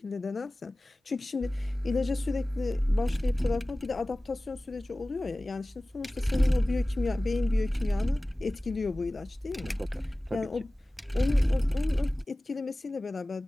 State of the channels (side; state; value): both; normal; correlation 0.97